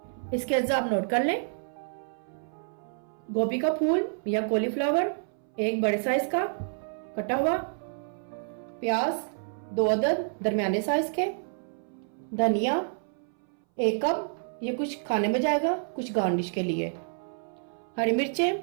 इसके अज्जा आप नोट कर लें। गोभी का फूल या कॉलीफ्लावर एक बड़े साइज का कटा हुआ, प्याज 2 अदद दरमियाने साइज के, धनिया 1 कप, ये कुछ खाने में जाएगा कुछ गार्निश के लिए, हरी मिर्चें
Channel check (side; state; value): left; silent; 59 dB below the other